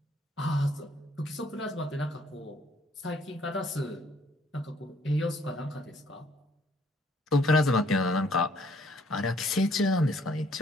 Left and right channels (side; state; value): both; normal; correlation 0.64